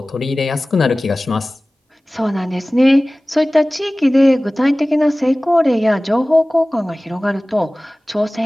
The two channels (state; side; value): normal; both; correlation 0.98